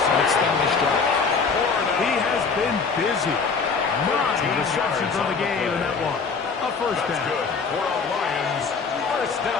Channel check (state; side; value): quieter; right; 5.1 dB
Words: extend this drive. He has been busy. 9 receptions on the game in that one. A first down. Good for a Lions first